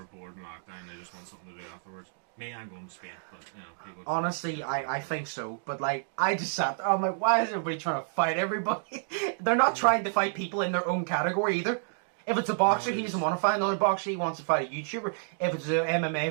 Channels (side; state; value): left; silent; digital silence